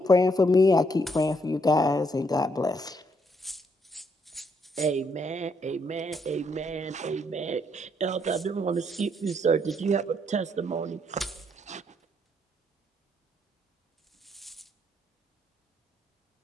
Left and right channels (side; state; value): both; normal; correlation 0.73